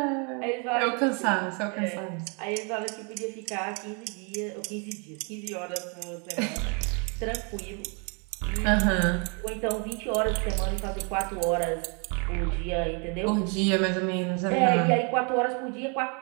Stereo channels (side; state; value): left; quieter; 35.7 dB